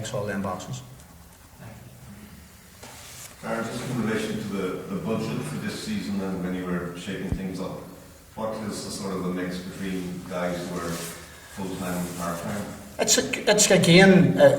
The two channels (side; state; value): both; identical; correlation 1.00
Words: all them boxes. Darren, just in relation to the budget for this season and when you were shaping things up, what is the sort of the mix between guys who are full-time and part-time? It's again,